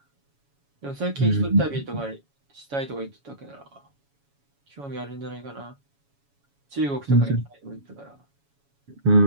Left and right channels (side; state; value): left; late; 7.1 ms